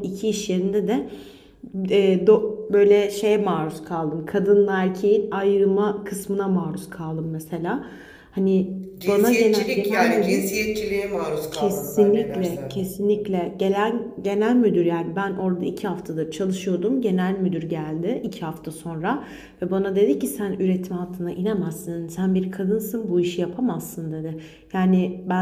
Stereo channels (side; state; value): both; identical; correlation 1.00